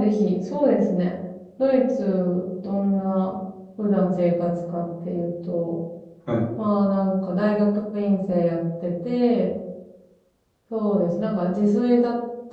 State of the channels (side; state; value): both; identical; correlation 1.00